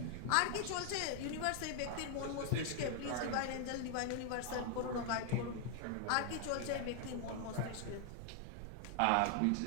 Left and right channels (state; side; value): different; both; correlation 0.00